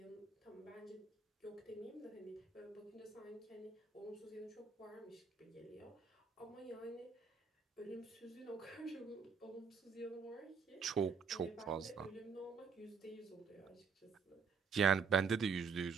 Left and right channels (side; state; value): left; quieter; 5.7 dB